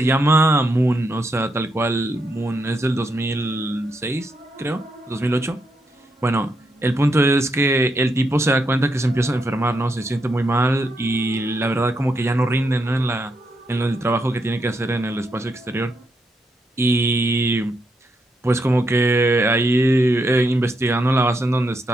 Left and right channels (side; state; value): both; normal; correlation 0.81